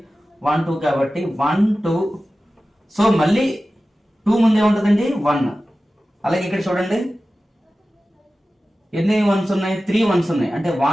1 2 కాబట్టి 1 2. సో మళ్ళీ 2 ముందే ఉంటుందండి 1. అలాగే ఇక్కడ చూడండి ఎన్ని వన్స్ ఉన్నాయి? 3 వన్స్ ఉన్నాయి, అంటే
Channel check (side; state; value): both; normal; correlation 0.95